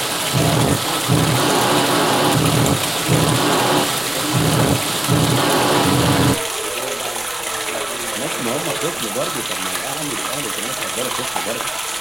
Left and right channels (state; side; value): noise; left; rumble, 24 dB below the sound